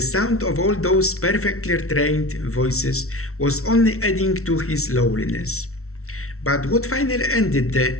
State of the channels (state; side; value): late; right; 0.63 ms